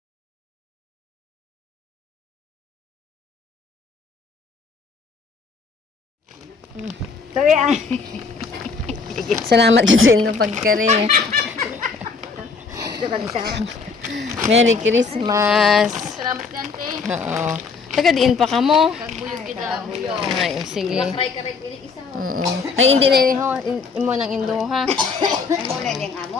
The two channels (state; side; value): quieter; right; 4.7 dB